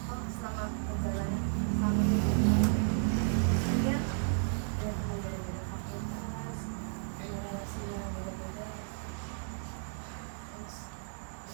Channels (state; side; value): silent; left; 55 dB below the other